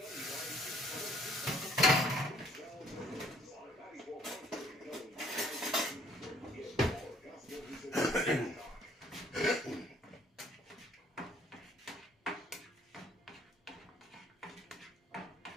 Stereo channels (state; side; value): normal; both; correlation 0.60